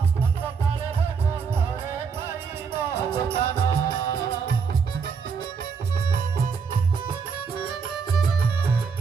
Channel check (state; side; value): quieter; left; 5.8 dB